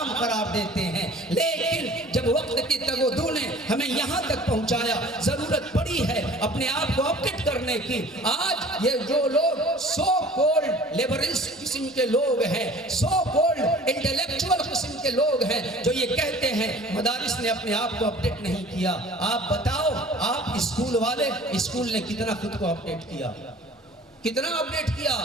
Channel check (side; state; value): both; normal; correlation 0.47